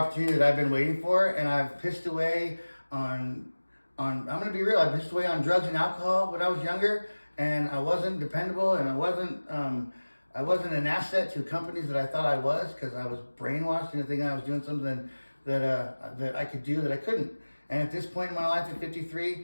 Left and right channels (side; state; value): both; inverted; correlation -1.00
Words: that I've been waiting for, and I've pissed away on I'm going to be real, I pissed away on drugs and alcohol when I was younger, and I wasn't dependable, and I wasn't an asset to companies that I thought I was, because I was brainwashed into thinking I was doing something that I could do that I couldn't. And at this point in my life, at